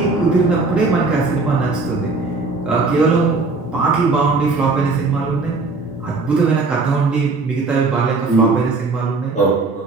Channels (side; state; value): left; quieter; 3.8 dB